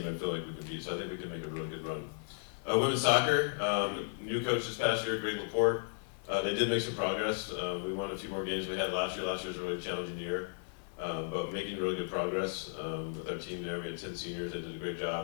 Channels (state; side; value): silent; right; 55 dB below the other